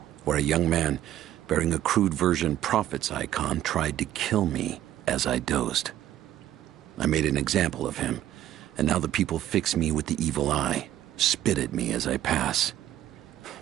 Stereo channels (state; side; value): quieter; left; 12.6 dB